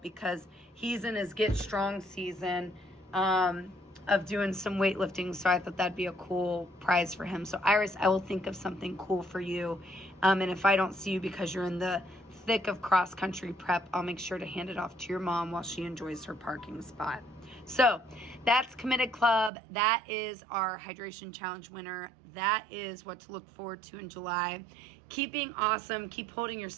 because he's in his Get Strong season of doing some weightlifting, so I thought that'd be a cool prize for him. So Iris, I will think of something cool for you, and if I don't see you because you're in the thick of cross-country prep, I'll make sure to hand it off to your mom while she enjoys her parking spot. So that's Committed Club. That is our hydration challenge winner. That is what to look forward to in July. Keep being awesome. Keep holding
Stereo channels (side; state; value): left; drops out; at 19.5 s